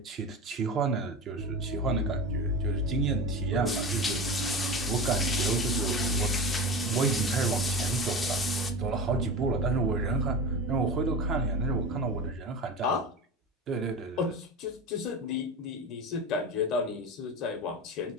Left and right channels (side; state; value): both; normal; correlation 0.28